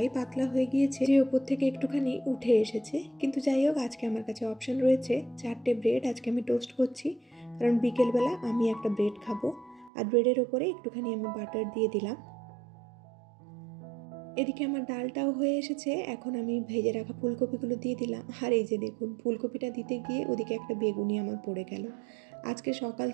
পাতলা হয়ে গিয়েছে যে ওপর থেকে একটুখানি উঠে এসেছে। কিন্তু যাই হোক, আজকে আমার কাছে অপশান রয়েছে 4টে ব্রেড আজকে আমি টোস্ট করছি, কারণ বিকেলবেলা আমি একটা ব্রেড খাবো। আর ব্রেডের ওপরে একটুখানি আমি বাটার দিয়ে দিলাম। এদিকে আমার ডালটাও হয়ে এসেছে, এখন আমি ভেজে রাখা ফুলকপিগুলো দিয়ে দিলাম। আর এই যে দেখুন, ফুলকপিটা দিতে গিয়ে ওদিকে একটা বেগুনি আমার পড়ে গেল। আজকে সকাল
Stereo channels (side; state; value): left; drops out; at 9.9 s